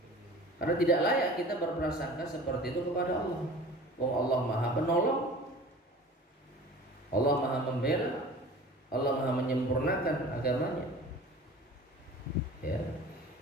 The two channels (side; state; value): both; normal; correlation 0.41